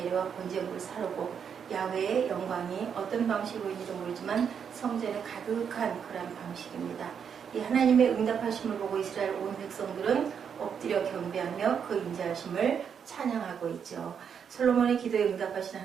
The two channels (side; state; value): left; quieter; 7.3 dB